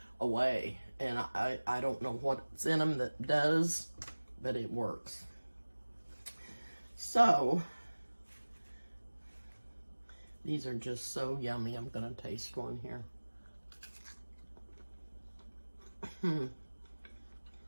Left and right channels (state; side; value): inverted; both; correlation -1.00